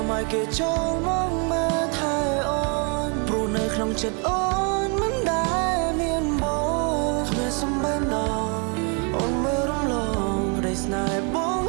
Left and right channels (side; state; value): left; quieter; 35.9 dB